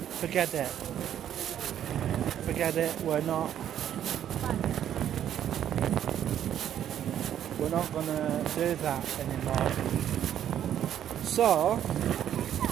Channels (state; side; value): quieter; left; 10.4 dB